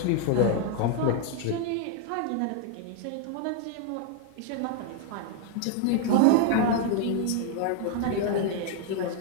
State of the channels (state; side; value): different; both; correlation 0.00